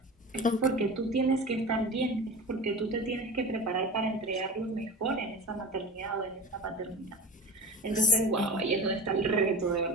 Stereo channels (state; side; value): normal; both; correlation 0.33